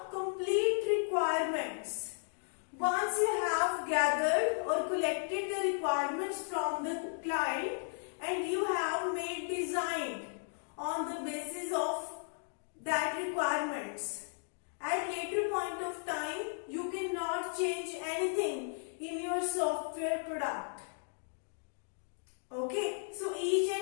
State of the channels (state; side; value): silent; right; digital silence